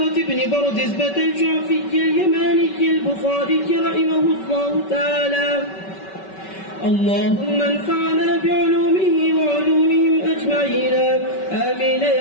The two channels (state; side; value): late; right; 5.3 ms